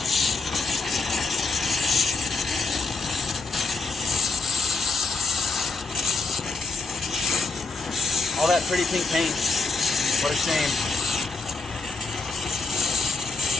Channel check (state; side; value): quieter; right; 3.9 dB